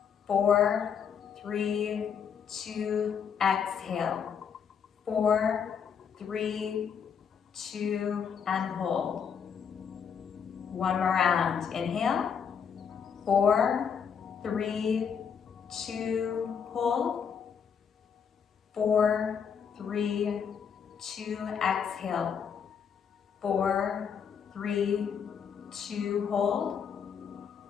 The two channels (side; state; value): right; quieter; 7.1 dB